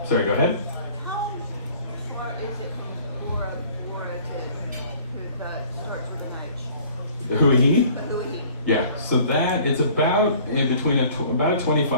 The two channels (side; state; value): both; inverted; correlation -0.52